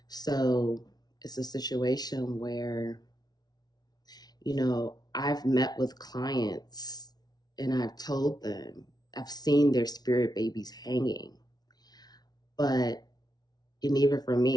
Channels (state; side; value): late; right; 0.19 ms